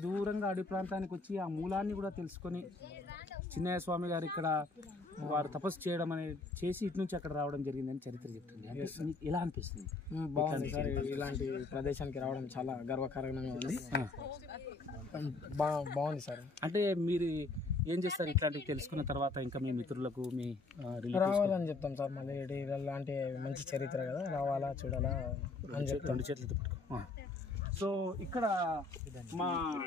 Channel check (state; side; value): quieter; right; 3.4 dB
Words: దూరంగా అడవి ప్రాంతానికి వచ్చి ఆ మూలాన్ని కూడా తెలుసుకొని చిన్నయ్య స్వామి గారు ఇక్కడ వారు తపస్సు చేయడం అనేది చేసి ఇటు నుంచి అక్కడ రావడం జరిగిందని చరిత్ర చెప్తుంది. అంటే ఎలా అనిపిస్తుంది? బాగుంది సార్, ఇలాంటి ప్రదేశానికి రావడం చాలా గర్వకారణంగా ఉంది. బాగుంది సార్. అంటే మీరు ఏం చేస్తారు ఇట్లాంటివి తెలుసుకున్న తర్వాత? ఇంకా మీ మిత్రులకు మీ రావాలని చెప్తాం సార్. మళ్ళీ ఇలాంటి మంచి చరిత్ర కదా, రావాలా చూడాలా అని చెప్తాం. 2 చేతులతో పట్టుకో. సో ఇక్కడ మా